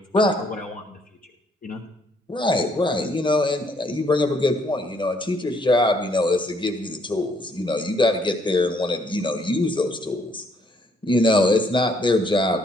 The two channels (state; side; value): normal; both; correlation 0.68